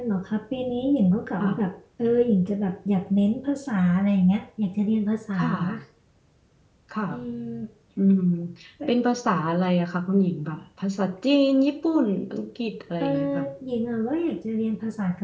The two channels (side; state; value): both; identical; correlation 1.00